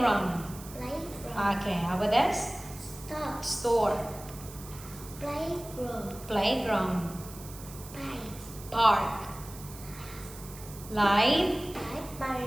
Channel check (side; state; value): right; noise; hiss, 16 dB below the sound